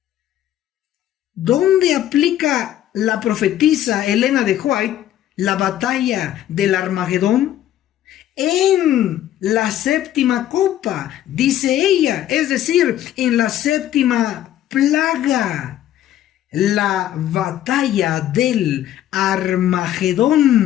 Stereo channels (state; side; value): quieter; right; 12.2 dB